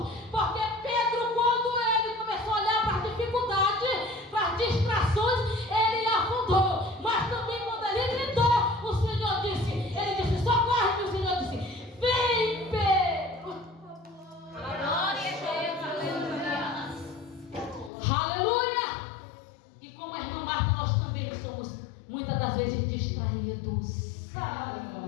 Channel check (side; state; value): right; drops out; at 17.9 s